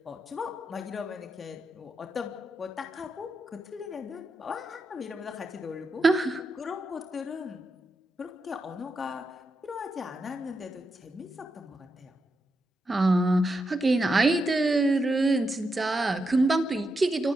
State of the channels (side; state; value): both; normal; correlation 0.86